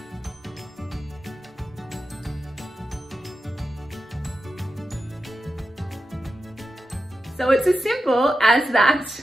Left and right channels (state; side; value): normal; both; correlation 0.90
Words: So it's as simple as that.